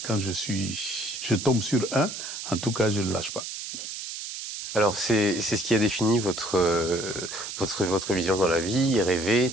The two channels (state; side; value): noise; right; hiss, 8 dB below the sound